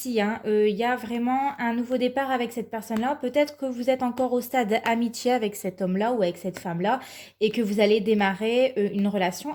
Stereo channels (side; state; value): both; identical; correlation 1.00